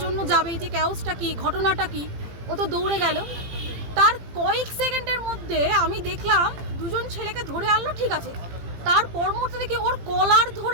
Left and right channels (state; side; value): late; left; 18 ms